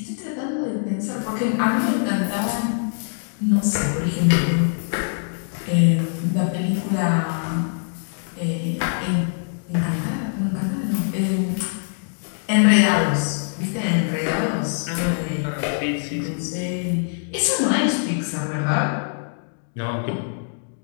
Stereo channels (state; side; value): silent; right; digital silence